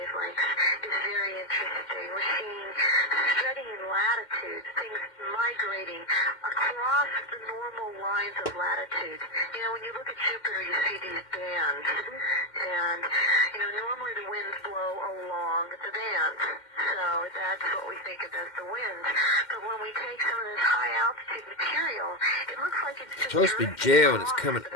is very interesting. We're seeing spreading in latitudes, things migrating across the normal lines of latitude. You know, when you look at Jupiter, you see these bands, and normally the winds blow along the bands, so that's what we think of as the winds. But when we take some of this high altitude material, it looks like it's just supposed to be gel and it's coming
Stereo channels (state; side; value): late; right; 2.1 ms